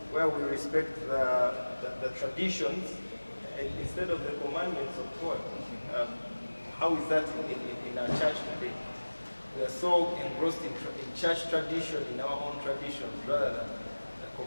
where we respect the traditions instead of the commandments of God. How is that in our church today? We are so engrossed in church tradition, in our own traditions, rather than the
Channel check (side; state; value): both; inverted; correlation -1.00